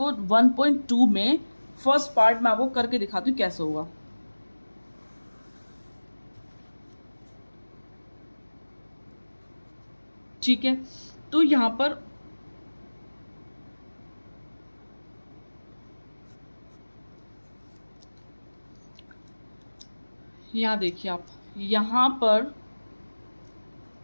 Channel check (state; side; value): inverted; both; correlation -1.00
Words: 1.2 में फर्स्ट पार्ट में आपको करके दिखाती हूँ कैसे होगा। ठीक है, तो यहाँ पर यहाँ देखिए आप, यहाँ पर